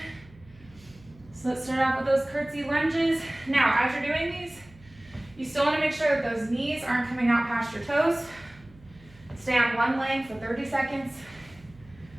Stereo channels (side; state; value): right; noise; hum, 24 dB below the sound